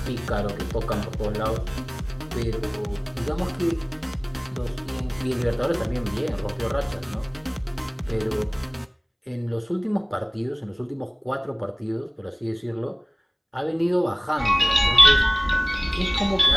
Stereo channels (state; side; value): identical; both; correlation 1.00